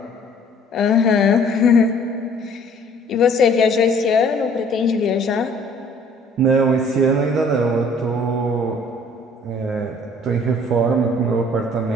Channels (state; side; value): normal; both; correlation 0.56